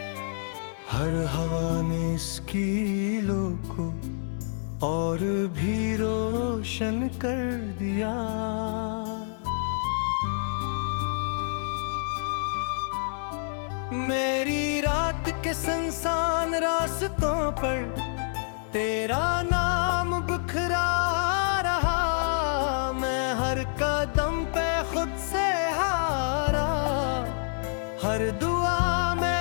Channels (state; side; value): silent; right; 60 dB below the other